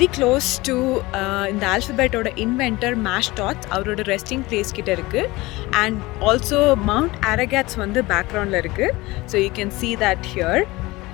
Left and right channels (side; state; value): right; quieter; 21.0 dB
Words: க்ளோஸ் டு இந்த ஆல்ஃபபெட்டோட இன்வென்டர் மேஷ்டாட்ஸ் அவரோட ரெஸ்டிங் பிளேஸ் கிட்ட இருக்குது. அண்ட் ஆல்சோ மவுண்ட் அரகாட்ஸ் வந்து பேக்ரவுண்டில் இருக்குது. So you can see that here.